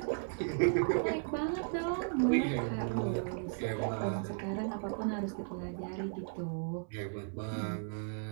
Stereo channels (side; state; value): left; silent; 54 dB below the other